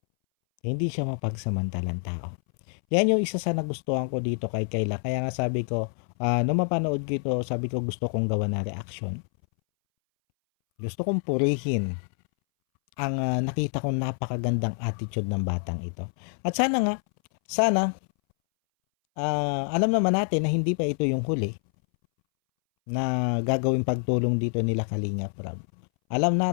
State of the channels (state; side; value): silent; right; 60 dB below the other